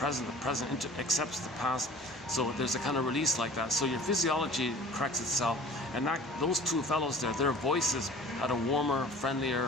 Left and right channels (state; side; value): normal; both; correlation 0.46